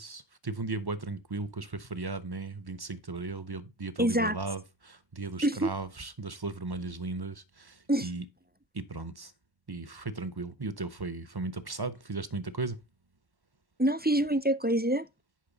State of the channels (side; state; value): both; normal; correlation 0.36